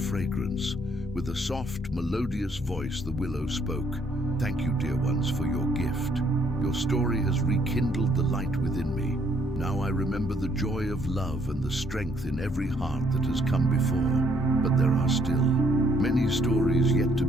With a soft, melodious voice, the willow spoke. "Thank you, dear ones, for your gift. Your story has rekindled the light within me. Now I remember the joy of love and the strength in every heart that has come before. But there are still many stories yet to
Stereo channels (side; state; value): both; normal; correlation 0.68